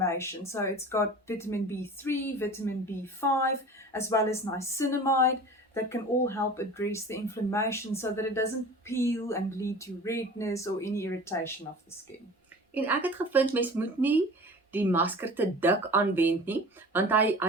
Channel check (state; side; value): normal; both; correlation 0.40